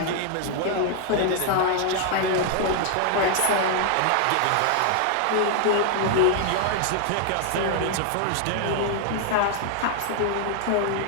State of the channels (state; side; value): different; both; correlation 0.00